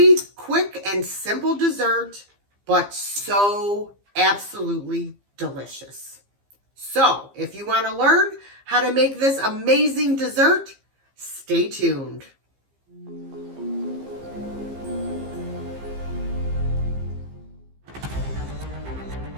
quick and simple dessert, but so absolutely delicious. So if you want to learn how to make this amazing dessert, stay tuned.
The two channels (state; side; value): late; left; 15 ms